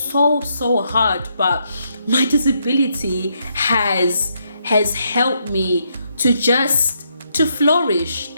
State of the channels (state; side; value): inverted; both; correlation -0.77